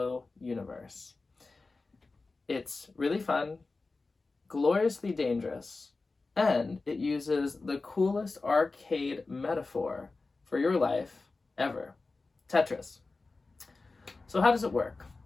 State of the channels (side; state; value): right; quieter; 3.7 dB